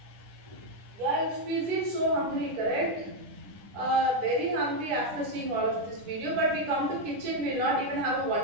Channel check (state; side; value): late; left; 10 ms